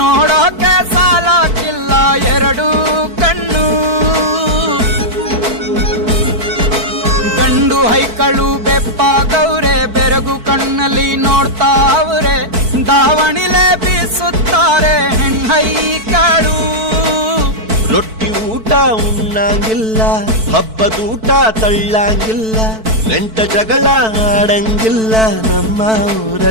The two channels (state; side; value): late; left; 4.5 ms